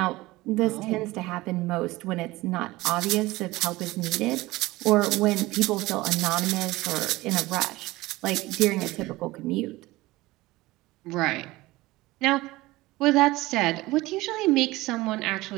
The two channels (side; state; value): left; quieter; 19.5 dB